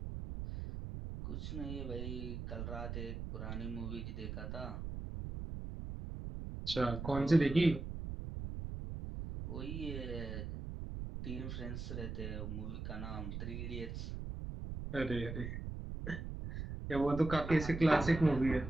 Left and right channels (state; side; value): noise; right; rumble, 6 dB below the sound